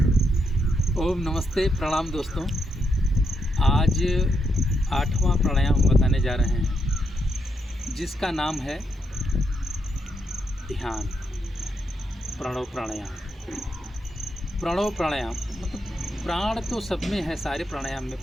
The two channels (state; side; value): normal; both; correlation 0.80